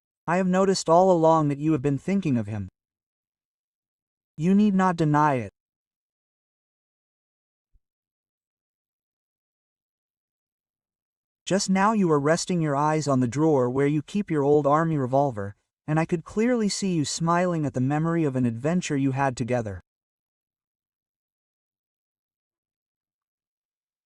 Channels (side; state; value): both; identical; correlation 1.00